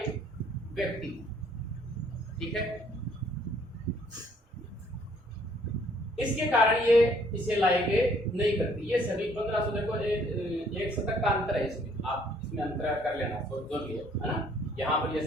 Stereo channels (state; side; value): normal; both; correlation 0.62